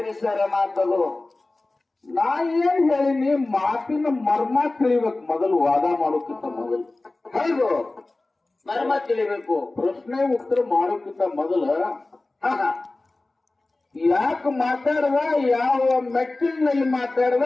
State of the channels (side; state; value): right; quieter; 3.1 dB